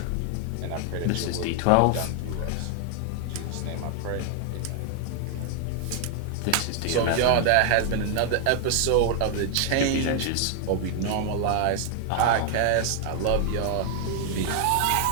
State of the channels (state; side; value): different; both; correlation 0.00